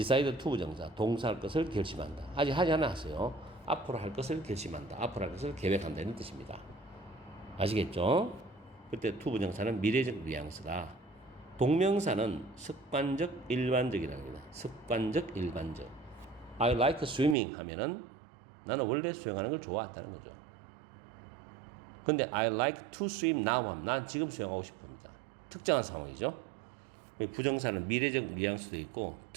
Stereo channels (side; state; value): left; drops out; at 17.4 s